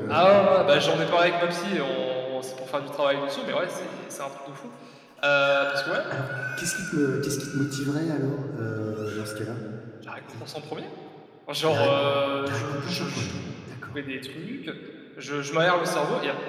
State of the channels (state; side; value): identical; both; correlation 1.00